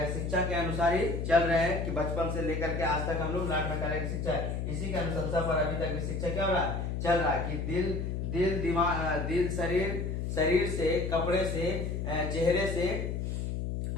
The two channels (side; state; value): left; noise; hum, 2 dB below the sound